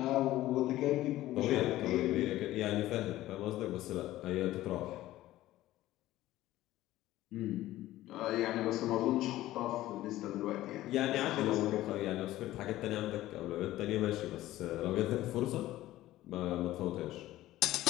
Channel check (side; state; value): right; quieter; 15.5 dB